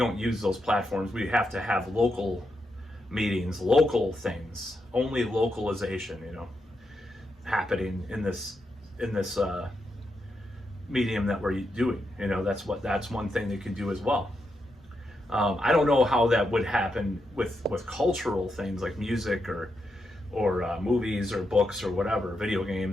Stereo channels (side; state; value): both; normal; correlation 0.83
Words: use those platforms. We have to have local meetings, local things, only localization, happening in this medium that we're doing. That's one thing they can do as well. I don't know how that would happen with cultural things like music or movies or books or whatever, video